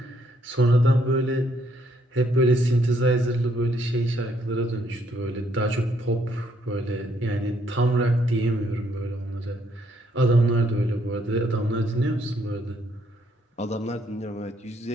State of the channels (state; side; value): normal; both; correlation 0.70